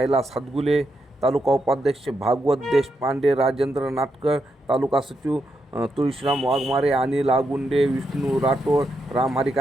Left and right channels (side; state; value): both; normal; correlation 0.83